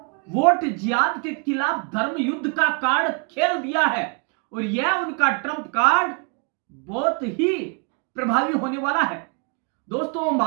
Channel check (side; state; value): left; quieter; 37.9 dB